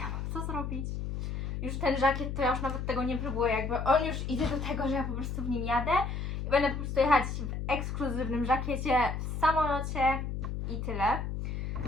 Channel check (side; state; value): left; noise; hum, 4 dB below the sound